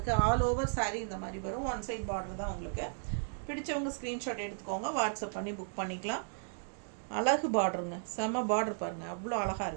ஆல் ஓவர் சாரீ இந்த மாதிரி வரும். ஒன் சைட் பார்டர் தான். உங்களுக்கு பிடிச்சவங்க ஸ்க்ரீன்ஷாட் எடுத்துக்கோங்க, வாட்ஸ்அப் பண்ணி புக் பண்ணிக்கலாம். அழகு பார்டருங்க, செம்ம பார்டர் பாருங்கள், அவ்வளோ அழகாக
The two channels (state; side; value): silent; left; digital silence